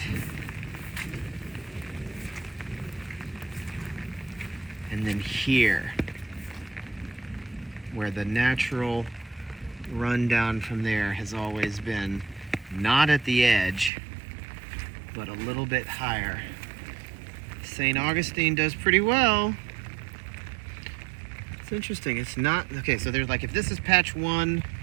And then here, where the natural rundown from there has always been, not at the edge, but a little bit higher. St. Augustine does pretty well. It's interesting, it's not, okay, so there's like, if this is patch 1,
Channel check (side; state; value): left; drops out; at 13.9 s